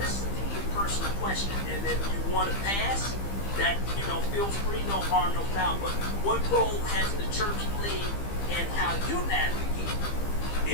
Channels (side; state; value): right; late; 15 ms